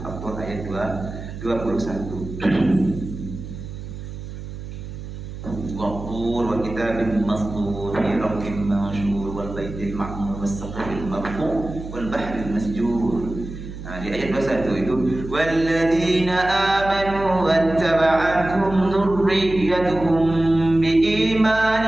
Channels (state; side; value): noise; right; hum, 10 dB below the sound